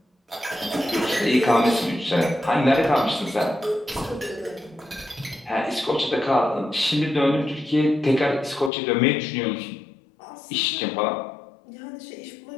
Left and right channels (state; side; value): drops out; right; at 8.7 s